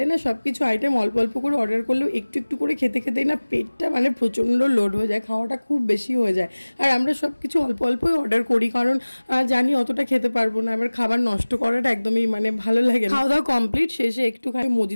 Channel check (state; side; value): inverted; both; correlation -1.00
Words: না সব কিছু আইটেম অল্প অল্প করে অর্ডার করলেও একটু একটু করে খেতে খেতেই না পেটটা মানে প্রচণ্ড লোড হয়ে যায়, খাওয়াটা খুব বেশি হয়ে যায়। আর আমরা সব কিছু অল্প অল্পই অর্ডার করি, কারণ জানি অতটা খেতে পারবো না, আবার খাবার নষ্ট করাটা একদমই মানে ভালো লাগে না। খাওয়া দাওয়া কমপ্লিট, শেষে একটুখানি